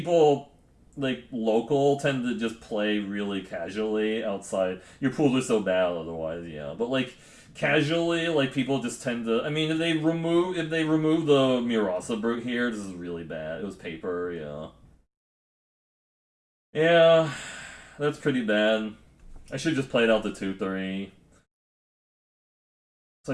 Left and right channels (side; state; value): both; identical; correlation 1.00